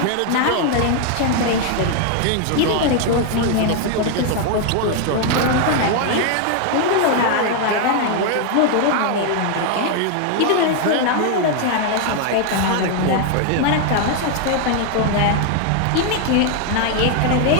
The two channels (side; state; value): both; different; correlation 0.00